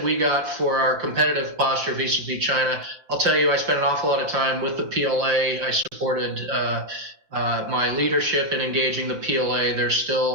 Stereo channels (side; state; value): left; late; 5.9 ms